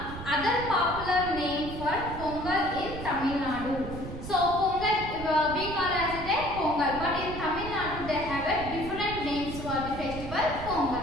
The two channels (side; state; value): right; noise; rumble, 9 dB below the sound